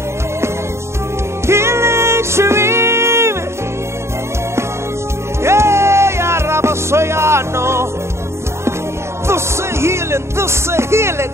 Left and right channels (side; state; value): left; late; 0.13 ms